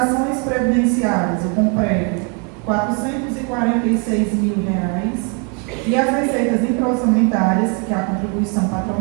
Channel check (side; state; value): left; quieter; 36.7 dB